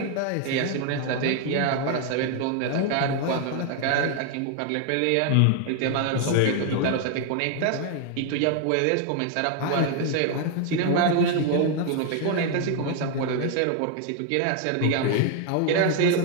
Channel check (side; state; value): both; different; correlation 0.00